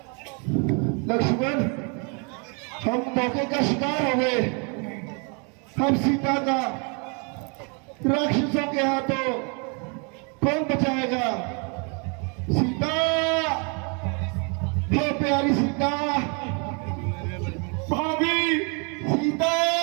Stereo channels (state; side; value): quieter; left; 35.1 dB